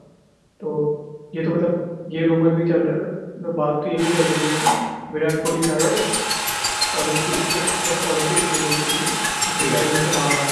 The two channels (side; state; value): both; identical; correlation 1.00